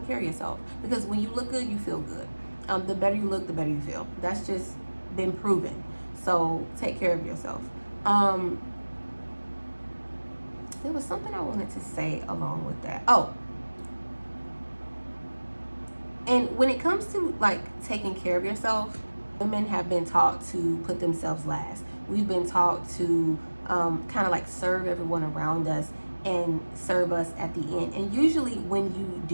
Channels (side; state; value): both; inverted; correlation -1.00